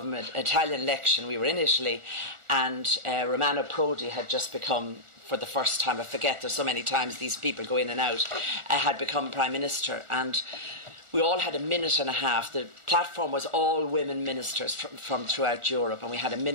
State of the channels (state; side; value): late; left; 1.4 ms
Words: We were in Italy, and Romano Prodi had just become, for the first time, I forget, there's so many times these people go in and out, had become Prime Minister. And we all had a minute and a half. The platform was all women ministers from throughout Europe, and we had a